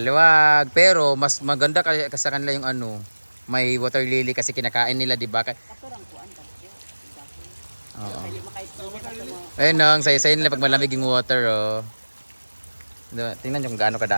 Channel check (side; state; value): both; inverted; correlation -1.00